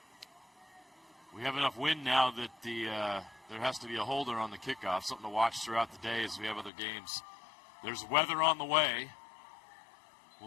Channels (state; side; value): drops out; right; at 6.7 s